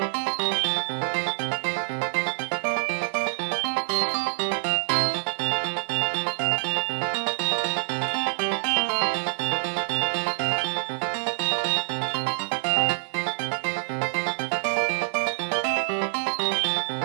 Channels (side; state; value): left; silent; 61 dB below the other